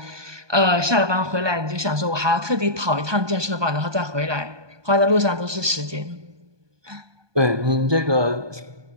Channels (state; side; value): late; left; 1.2 ms